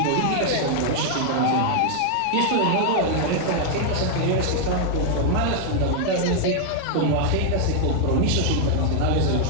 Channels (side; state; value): both; different; correlation 0.00